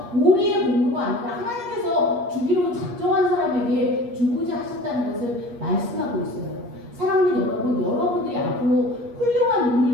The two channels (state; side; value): late; left; 8.4 ms